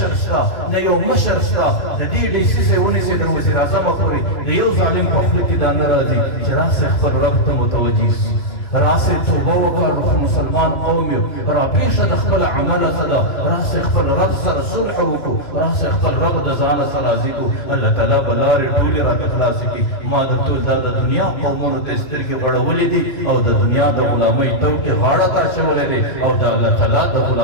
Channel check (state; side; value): late; right; 3.0 ms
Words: شته نه یو مشر شته د دې ډیسیسۍ ونیسئ د وزیر اعظمه پورې د یو ظالم په خوله کې دا نه راځي چې راسئ خپل رب ته متوجه شي راسئ توبه وکړو مسلمان قوم یو راپېښه د خپل عمله څه ده راسئ خپل رب سره صلح وکړو راسئ خپل رب د ځانه سره راضي کړو الله تعالی به لارې ټولې راته خلاصې کړي ما درته دا د دنیا قومونو ته سترګې بړولې دي او د دنیا د غلامۍ توکې غاړه ته اچولې دي او د الله تعالی د